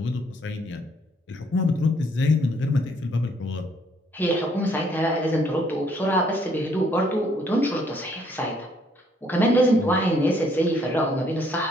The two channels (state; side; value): normal; both; correlation 0.66